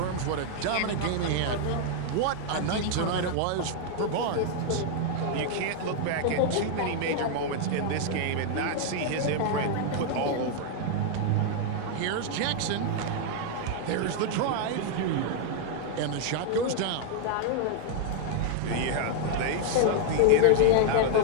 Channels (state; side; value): different; both; correlation 0.00